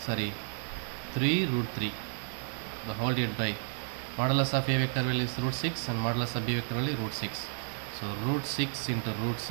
3 root 3 the whole divided by modulus of A vector value is root 6 and modulus of B vector value root 6. So root 6 into root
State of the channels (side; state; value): left; silent; 56 dB below the other